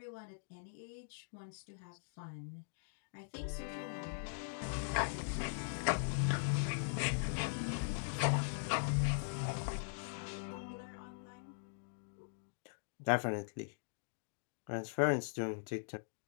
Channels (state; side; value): silent; right; digital silence